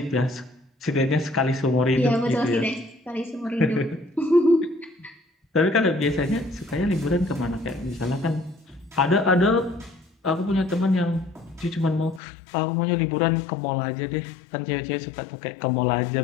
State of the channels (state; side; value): drops out; right; at 12.2 s